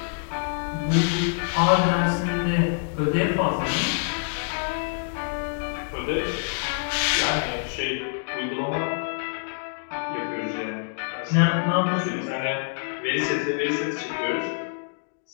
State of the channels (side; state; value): right; silent; digital silence